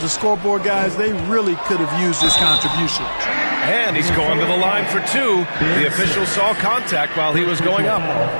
the scoreboard, guys, they really could have used this contribution. And he's going to the line for two. The official saw contact while he was going up.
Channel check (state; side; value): inverted; both; correlation -1.00